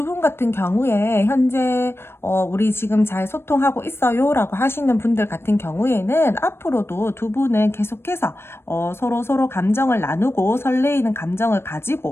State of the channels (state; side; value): late; right; 0.12 ms